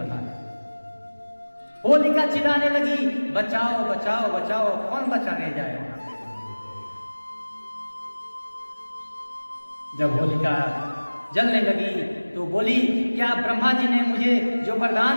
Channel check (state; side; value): inverted; both; correlation -1.00